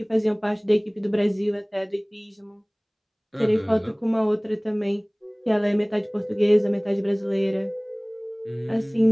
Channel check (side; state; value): both; identical; correlation 1.00